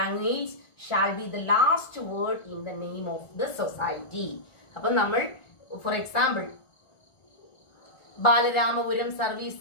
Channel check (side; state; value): right; late; 1.5 ms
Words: shall be the last word in the name of the society. അപ്പൊ നമ്മൾ ഫോർ എക്സാമ്പിൾ ബാലരാമപുരം സർവീസ്